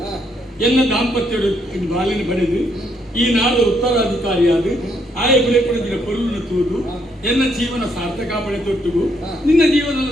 ಹಾ ಎನ್ನ ದಾಂಪತ್ಯ ಬಾಲಿನ ಪಡೆದು ಈ ನಾಡು ಉತ್ತರಾಧಿಕಾರಿಯಾದ ಆಯ ಬೆಳೆ ಪಡೆದಿನ ಪೊರುಳನ್ನು ತೂದು ಎನ್ನ ಜೀವನ ಸಾರ್ಥಕ ಪಡೆ ತೊಟ್ಟುಗು ನಿನ್ನ ಜೀವನ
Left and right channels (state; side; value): normal; both; correlation 0.73